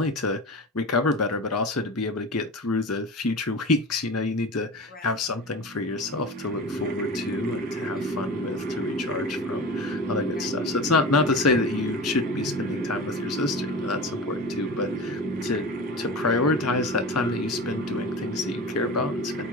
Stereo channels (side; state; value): both; normal; correlation 0.31